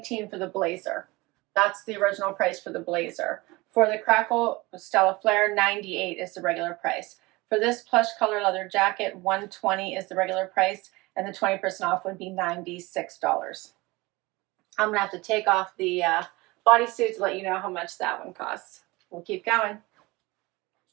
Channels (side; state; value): left; quieter; 22.7 dB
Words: for the blazer. That's the original price for the blazer. For the Crackle Stella Flare, $98 is the regular price. For this plush color leather jacket, $120 is the regular price, and the 20% off would be $96. I'm gonna have to take off the bodysuit to let you know how much that one costs. We'll keep going.